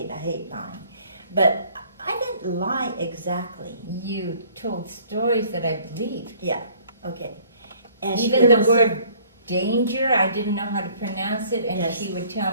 lying. But I didn't lie exactly. You told stories that I believed. Yeah, okay. And she Even the was- word danger, I didn't know how to pronounce it, and Yes. she would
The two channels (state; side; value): inverted; both; correlation -0.56